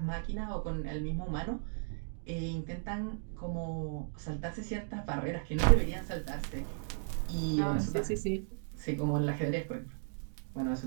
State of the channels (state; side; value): silent; left; digital silence